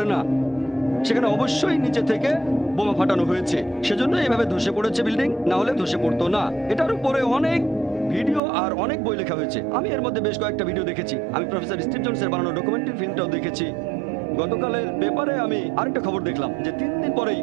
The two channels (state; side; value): drops out; left; at 8.4 s